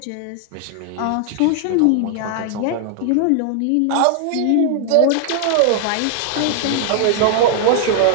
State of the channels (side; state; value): both; different; correlation 0.00